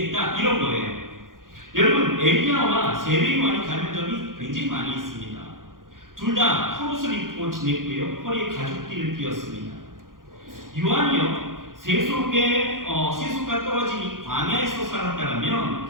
이런 거예요. 여러분, 엘리야와 세례 요한이 닮은 점이 굉장히 많이 있습니다. 둘 다 겉옷을 입고 지냈고요, 허리에 가죽띠를 띄었습니다. 요한이요, 세속과 떨어진 이 광야에서 살았다면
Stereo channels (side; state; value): left; late; 0.90 ms